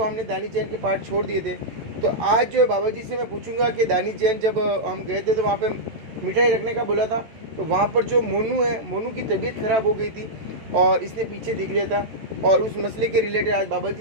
हमने दानिश जैन के पार्ट छोड़ दिए थे, तो आज जो है बाबा जी से मैं पूछूंगा कि दानिश जैन जब हम गए थे तो वहाँ पे मिठाई रखने का बोला था, तो वहाँ पर जो मोनू है, मोनू की तबीयत ख़राब हो गई थी और इसने पीछे देख लिया था। और उस मसले के रिलेटेड आज बाबा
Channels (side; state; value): left; late; 13 ms